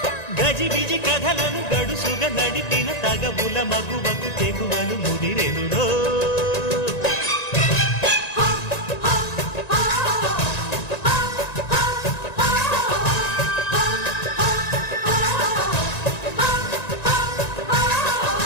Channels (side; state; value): right; late; 1.9 ms